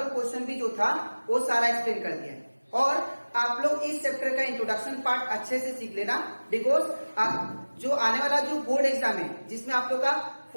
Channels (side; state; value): both; inverted; correlation -1.00